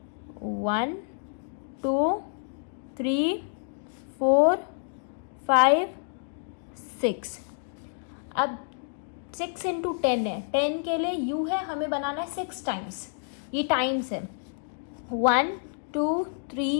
1 2 3 4 5 6। अब 6 इंटू 10 है, 10 के लिए u है, हमें बनाना है 6 टाइम्स, ये टाइम्स है। 1 2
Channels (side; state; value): right; silent; digital silence